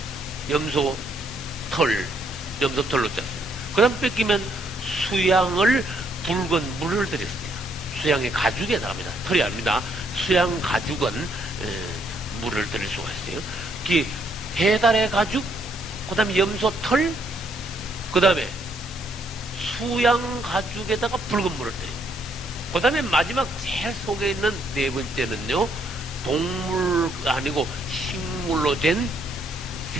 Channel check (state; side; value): normal; both; correlation 0.71